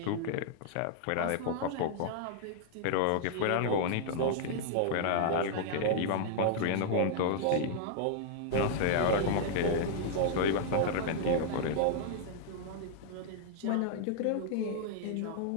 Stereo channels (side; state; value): both; different; correlation -0.01